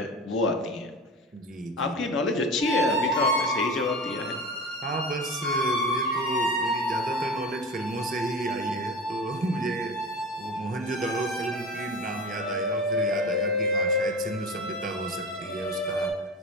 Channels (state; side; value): normal; both; correlation 0.31